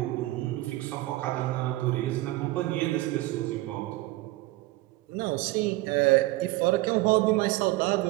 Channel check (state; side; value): quieter; left; 19.0 dB